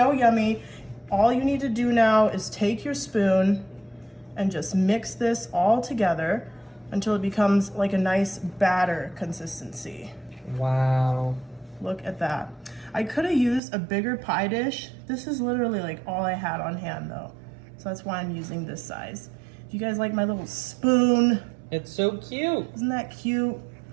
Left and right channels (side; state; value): left; drops out; at 13.6 s